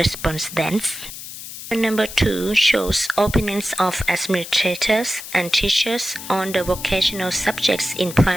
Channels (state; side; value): noise; left; hiss, 11 dB below the sound